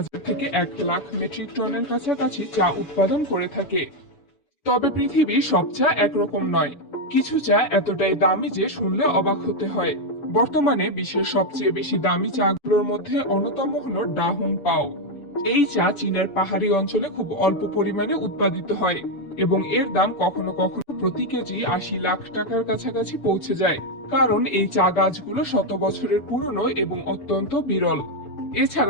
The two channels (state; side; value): late; right; 7.0 ms